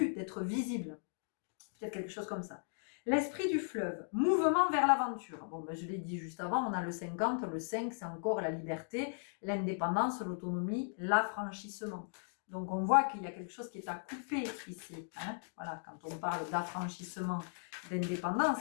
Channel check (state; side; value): silent; right; digital silence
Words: d'être visible. Peut-être quelque chose comme ça. L'esprit du fleuve, mouvement vers l'aventure. Bon, je l'ai dit juste avant, on a le 50, le 5, c'est encore la liberté, l'indépendance, l'autonomie, l'affranchissement. Donc, on voit qu'il y a quelque chose qui est à couper ici. Hein, voilà, quand on parle d'affranchissement,